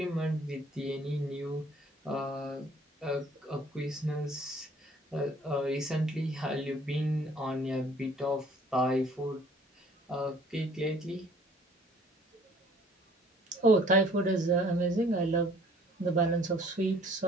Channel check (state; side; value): normal; both; correlation 0.56